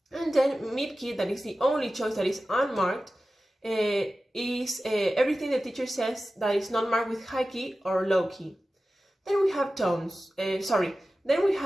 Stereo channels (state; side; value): normal; both; correlation 0.95